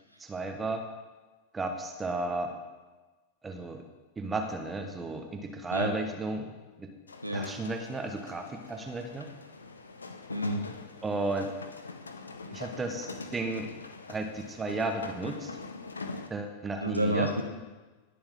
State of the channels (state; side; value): normal; both; correlation 0.18